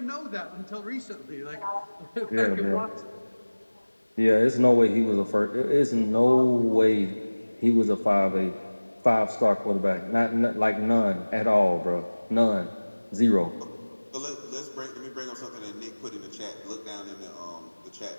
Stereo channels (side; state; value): both; inverted; correlation -1.00